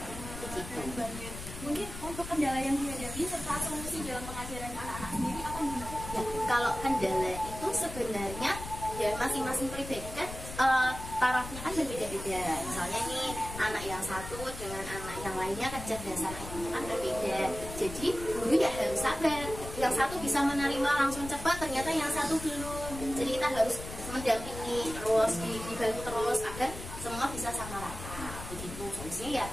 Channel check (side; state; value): left; noise; rumble, 10 dB below the sound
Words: Gitu. Mungkin untuk kendala yang dihadapi serta solusi dalam pengajaran anak-anak sendiri apa nih? Ya, kalau kendala itu sebenarnya ya masing-masing pribadi kan tarafnya kan berbeda-beda. Misalnya nih anak yang satu dengan anak yang lainnya kecerdasan IQ-nya kan berbeda. Jadi guru ya harus sabar. Yang satu bisa menerima langsung cepat, ternyata yang satu belum. Jadi kita harus mendampingi terus, dibantu terus agar semua bisa sama rata. Begitu solusinya ya